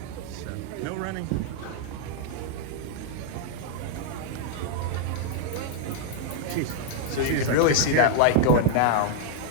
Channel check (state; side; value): different; both; correlation 0.00